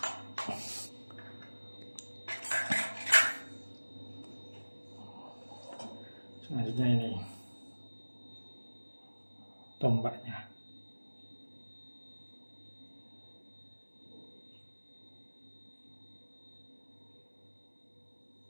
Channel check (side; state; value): both; inverted; correlation -1.00